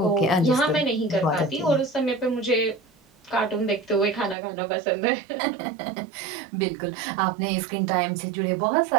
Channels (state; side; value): drops out; left; at 4.4 s